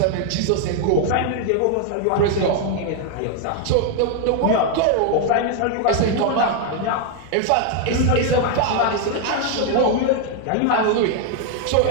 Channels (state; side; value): different; both; correlation 0.00